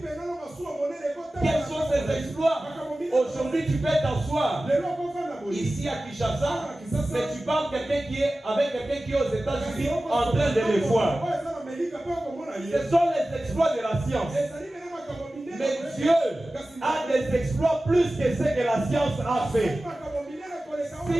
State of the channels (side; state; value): both; normal; correlation 0.96